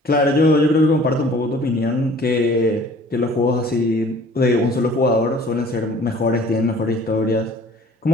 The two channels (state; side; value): normal; both; correlation 0.51